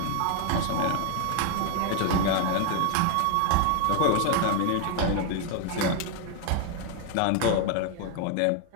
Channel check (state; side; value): different; both; correlation 0.01